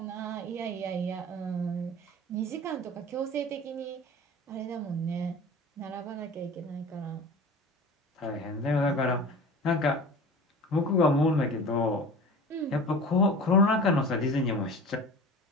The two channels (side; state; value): both; normal; correlation 0.37